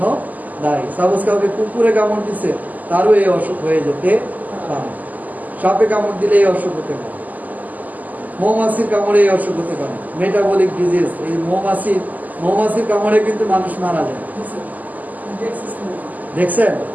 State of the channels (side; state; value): left; late; 0.080 ms